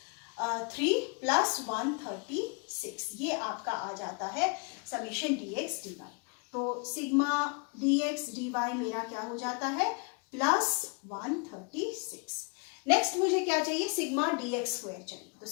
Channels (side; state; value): right; quieter; 34.1 dB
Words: 3 प्लस 136, ये आपका आ जाता है समेशन dx dy। तो सिग्मा dx dy मेरा क्या हो जाता है प्लस 136। नेक्स्ट मुझे क्या चाहिए, सिग्मा dx स्क्वायर चाहिए, तो